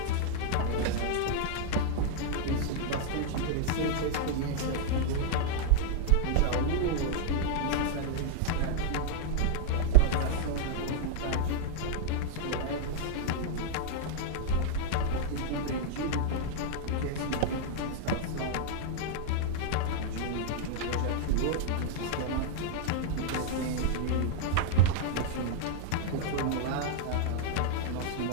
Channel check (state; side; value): different; both; correlation -0.01